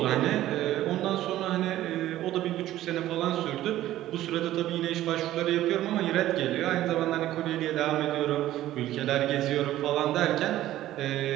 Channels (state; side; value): quieter; left; 14.1 dB